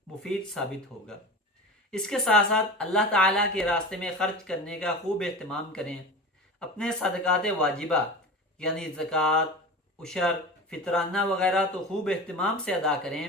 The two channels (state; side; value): normal; both; correlation 0.31